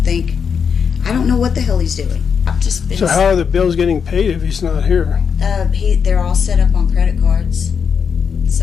think. I don't know what the hell he's doing. I've just been. So how are the bills getting paid if he's not here? They're all set up on credit cards.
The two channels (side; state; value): right; quieter; 6.6 dB